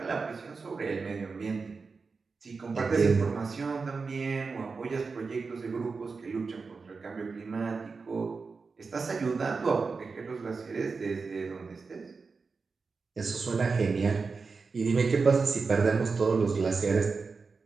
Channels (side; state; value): left; quieter; 4.6 dB